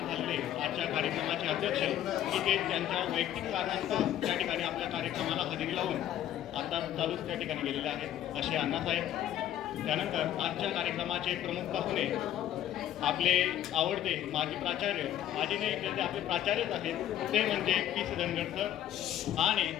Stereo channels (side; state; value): right; quieter; 11.7 dB